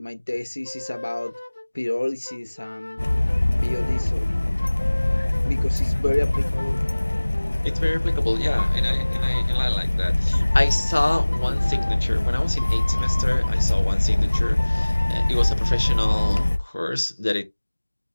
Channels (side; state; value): both; inverted; correlation -1.00